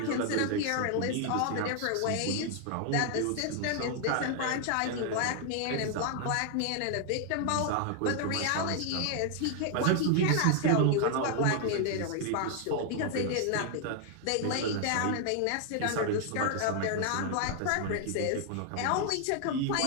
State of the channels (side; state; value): both; different; correlation 0.00